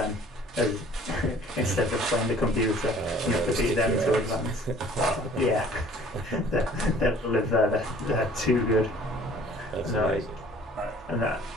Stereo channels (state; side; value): normal; both; correlation 0.52